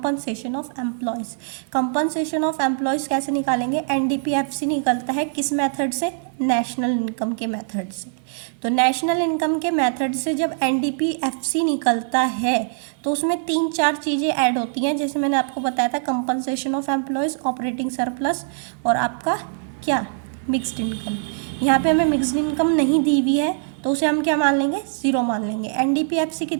of employees. Compensation of employees कैसे निकालेंगे, NDPFC निकलता है किस मेथड से, नेशनल इनकम के मेथड से। तो नेशनल इनकम के मेथड से जब NDPFC निकलता है तो उसमें 3-4 चीज़ें ऐड होती हैं, जैसे मैंने आपको बताया था compensation of employees, operating surplus और आपका क्या मिक्स्ड इनकम। यहाँ पे हमें मिक्स्ड इनकम नहीं दी हुई है तो उसे हम क्या मान लेंगे, 0 मान लेंगे। NDPFC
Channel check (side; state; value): left; silent; 61 dB below the other